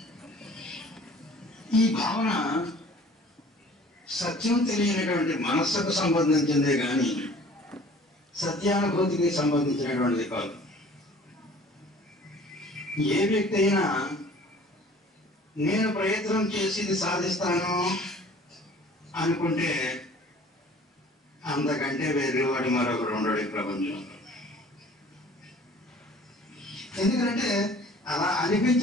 ఈ భావన సత్యం తెలియనటువంటి మనస్సుకు సంబంధించిందే కానీ సత్యానుభూతికి సంబంధించినటువంటిది కాదు. ఏ వ్యక్తి అయినా నేను ప్రయత్నం చేసి ఇది సాధిస్తాను అనుకుంటే అంతకంటే వెర్రివాడు మరొకడు ఉండడు ఈ ప్రపంచంలో. ఎందుకంటే అలా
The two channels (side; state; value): both; normal; correlation 0.50